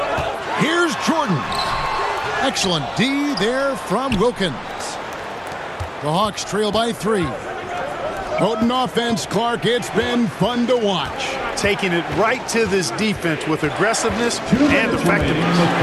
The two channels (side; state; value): both; identical; correlation 1.00